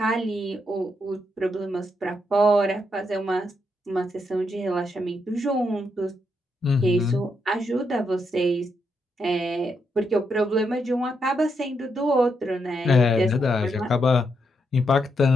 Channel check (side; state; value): both; normal; correlation 0.80